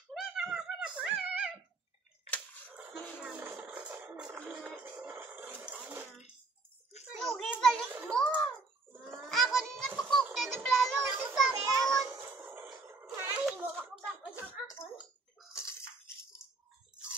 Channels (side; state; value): left; quieter; 3.7 dB